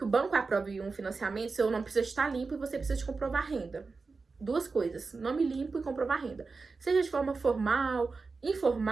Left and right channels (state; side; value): quieter; left; 4.3 dB